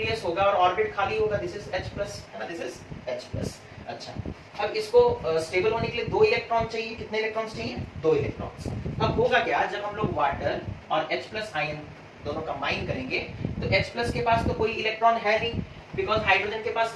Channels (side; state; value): both; identical; correlation 1.00